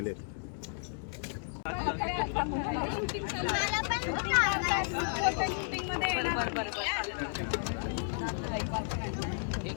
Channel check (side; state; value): right; silent; digital silence